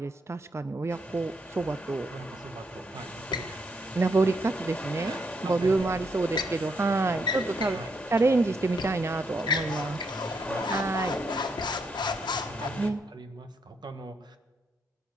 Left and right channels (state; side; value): normal; both; correlation 0.77